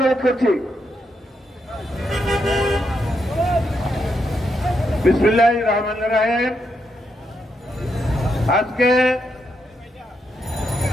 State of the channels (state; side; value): normal; both; correlation 0.81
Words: করছি। বিসমিল্লাহির রহমানির রহিম। আজকে